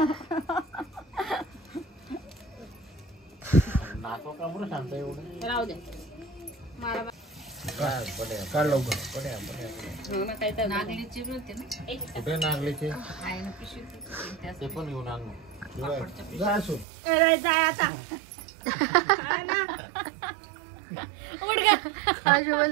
नाचो का बरं शांत एवढं. राहू दे. काढ लवकर. नागलीची होते ना. कुठे नागलीचे ते पण घेऊन आण. जाय आता.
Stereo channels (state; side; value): drops out; left; at 16.9 s